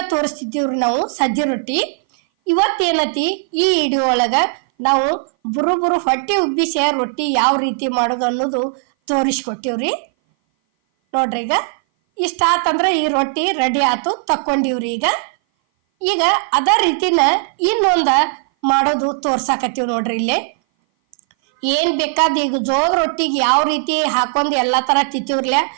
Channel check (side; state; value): left; silent; 58 dB below the other